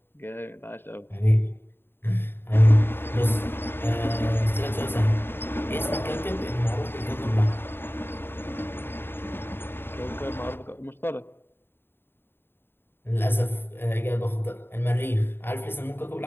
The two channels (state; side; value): late; right; 0.11 ms